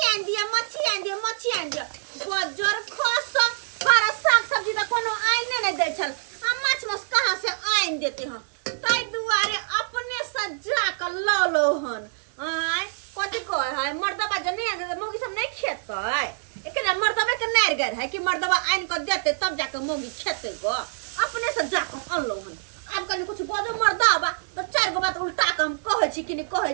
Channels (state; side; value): silent; left; digital silence